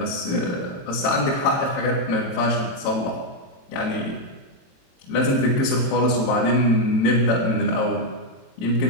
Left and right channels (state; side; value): late; right; 22 ms